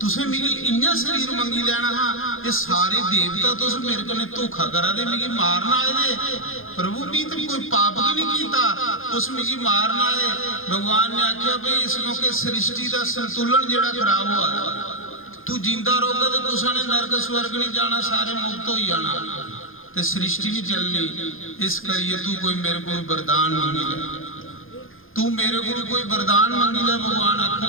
मिगी इन्ना शरीर मंगी लेना हाँ ये सारे देवता तुस मेरे कने धोखा करा दे मिगी मारना आए दे प्रभु भी तो कोई पाप भी नहीं कीता तुस मिगी मारना आए भगवान ने आख्या भाई इस मौके सृष्टि का संतुलन जिहड़ा खराब हुआ तू जिंदा रहोगा तो तुसां ने नरक स्वर्ग नहीं जाना सारे मुक्त हो जाना ते सृष्टि नहीं चलनी इस करिए तू कोई मेरे को वरदान मांगी ले तू मेरे को कोई वरदान मांगी ले भगवान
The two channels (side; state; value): right; late; 0.60 ms